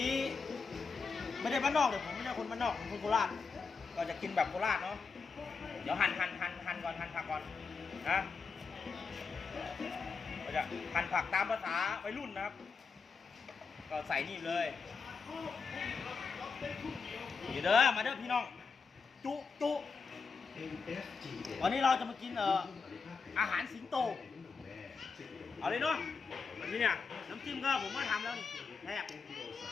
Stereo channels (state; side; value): quieter; right; 5.0 dB